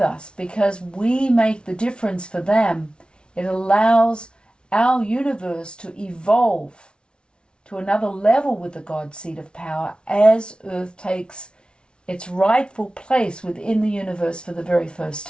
because we make the difference for them. It allows our universe to evolve to another level with the God seed of power as Earth takes its rightful place within the universe for the very first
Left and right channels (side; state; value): right; late; 0.056 ms